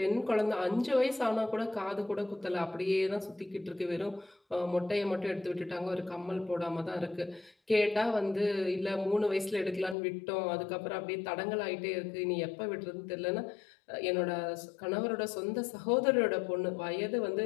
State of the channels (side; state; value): right; drops out; at 10.0 s